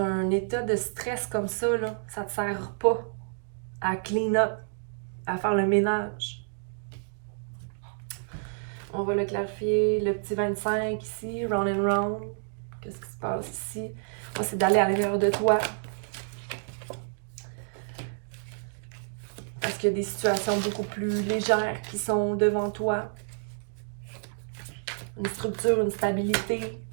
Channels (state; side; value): silent; left; digital silence